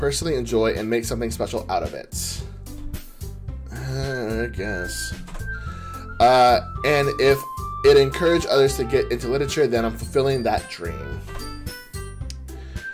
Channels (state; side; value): identical; both; correlation 1.00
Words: enjoy and make something special out of it. I guess. And if it encouraged others to get into literature, then I'm fulfilling that dream.